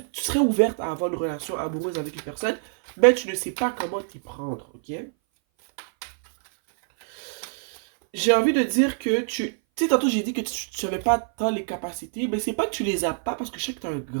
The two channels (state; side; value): silent; left; 59 dB below the other